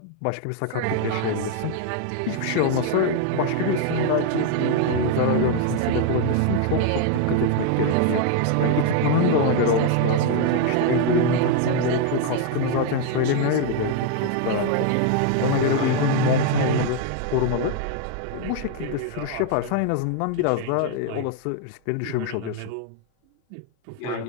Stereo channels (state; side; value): different; both; correlation 0.00